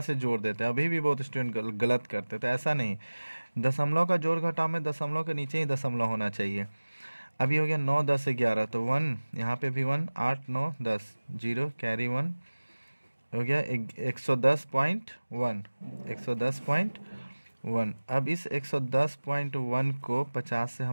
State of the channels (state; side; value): inverted; both; correlation -1.00